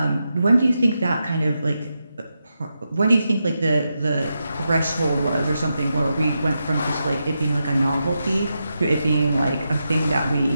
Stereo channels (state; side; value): inverted; both; correlation -0.87